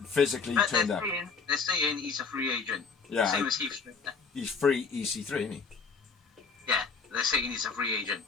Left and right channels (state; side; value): quieter; right; 5.2 dB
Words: physically turned up. They're saying he's a free agent. Yeah. Same as Heath Slater. He's free EC3, isn't he? Yeah, they're saying he's a free agent.